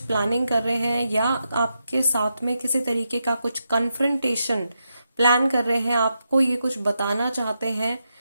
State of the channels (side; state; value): both; inverted; correlation -0.85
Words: कर रहे हैं या आपके साथ में किसी तरीके का कुछ कन्फ्रंटेशन प्लान कर रहे हैं, आपको ये कुछ बताना चाहते हैं।